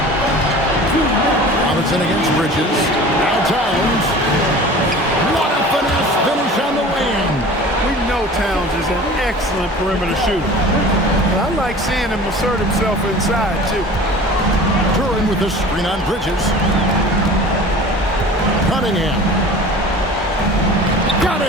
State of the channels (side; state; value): both; normal; correlation 0.41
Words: Robinson against Bridges. Now Towns. What a finesse finish on the lane. We know Towns is an excellent perimeter shooter. But I like seeing him assert himself inside, too. Turin with the screen on Bridges. Cunningham. Got